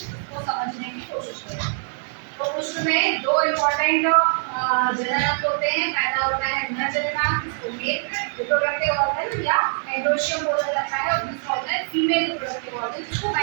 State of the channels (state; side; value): silent; left; 63 dB below the other